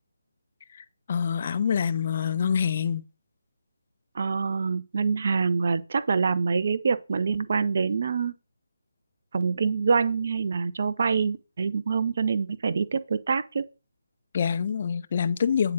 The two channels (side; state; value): both; inverted; correlation -0.82